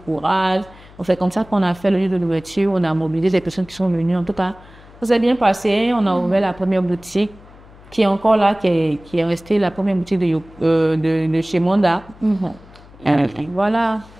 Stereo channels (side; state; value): left; noise; hum, 23 dB below the sound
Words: C'est comme ça qu'on a fait le lieu de l'ouverture, on a mobilisé des personnes qui sont venues. En tout cas, ça s'est bien passé, on a ouvert la première boutique, qui est encore là, qui est restée la première boutique de chez Monda. Voilà.